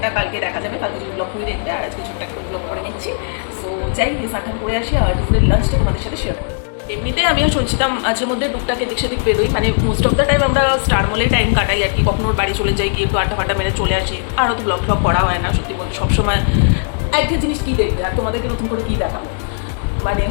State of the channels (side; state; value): right; silent; digital silence